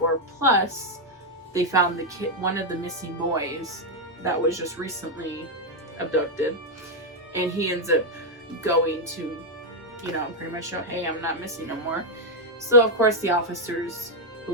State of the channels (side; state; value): both; normal; correlation 0.00